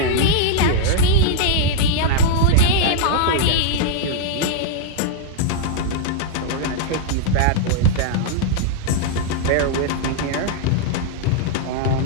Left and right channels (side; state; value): both; different; correlation -0.01